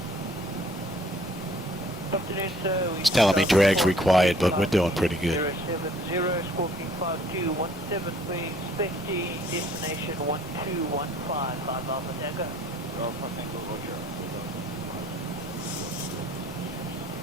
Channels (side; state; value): both; normal; correlation 0.57